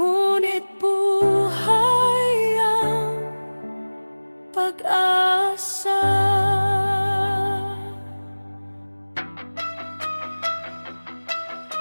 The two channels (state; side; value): inverted; both; correlation -1.00